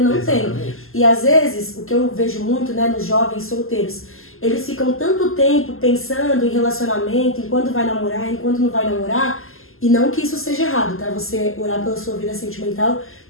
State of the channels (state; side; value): late; right; 0.61 ms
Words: não tem. E às vezes, o que eu vejo muito, né, nos jovens solteiros, eles ficam tanto tempo pensando em relacionamento, em quando vai namorar, em quando não vai namorar, e não que isso seja errado, tá? Você orar pela sua vida sentimental